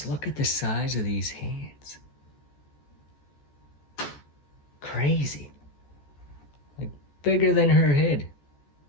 look at the size of these hands. Crazy. Like, bigger than her head.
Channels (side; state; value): right; late; 14 ms